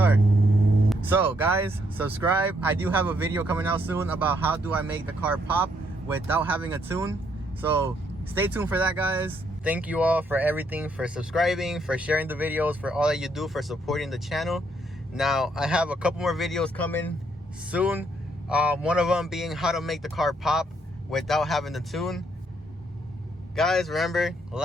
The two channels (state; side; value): normal; both; correlation 0.72